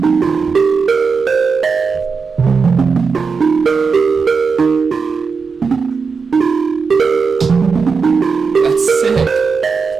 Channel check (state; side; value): quieter; left; 5.2 dB